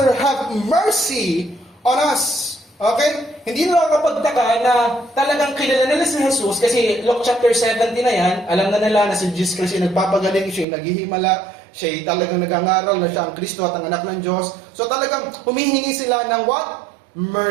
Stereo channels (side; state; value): left; drops out; at 10.7 s